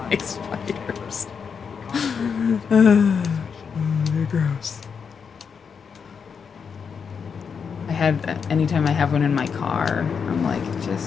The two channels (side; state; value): right; quieter; 6.3 dB